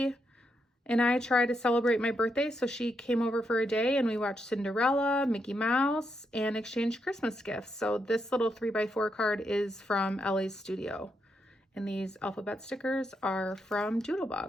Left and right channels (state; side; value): normal; both; correlation 0.81